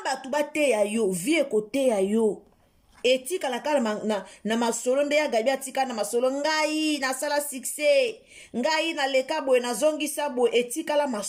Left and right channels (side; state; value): both; identical; correlation 1.00